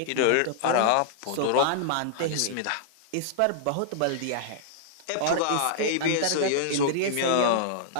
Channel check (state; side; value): different; both; correlation -0.02